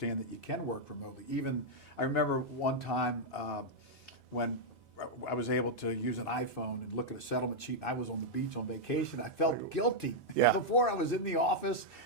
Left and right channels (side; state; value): both; normal; correlation -0.03